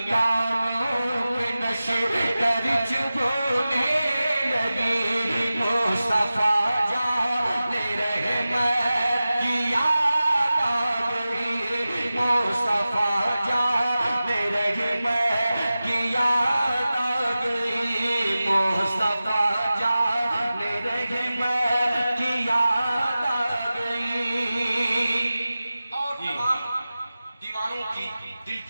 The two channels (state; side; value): inverted; both; correlation -0.95